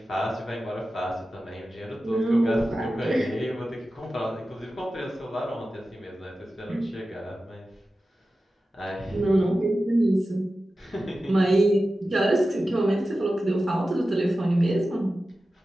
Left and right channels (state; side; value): normal; both; correlation 0.94